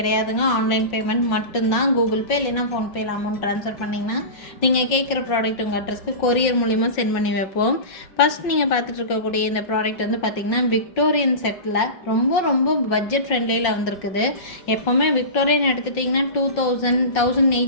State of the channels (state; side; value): late; right; 5.4 ms